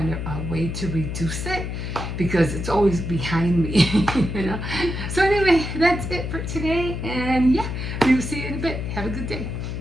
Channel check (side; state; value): left; noise; hum, 4 dB below the sound